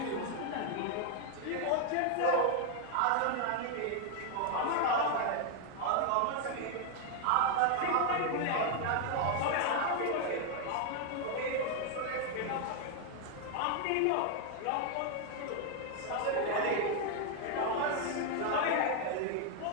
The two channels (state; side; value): different; both; correlation 0.01